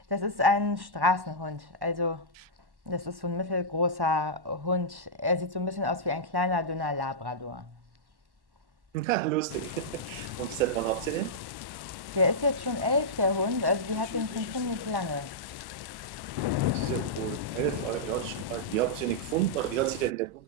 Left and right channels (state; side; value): late; left; 1.1 ms